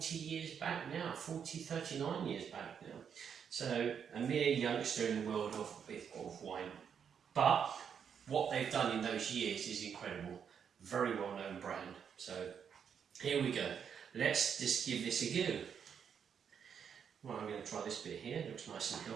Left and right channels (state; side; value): quieter; left; 7.5 dB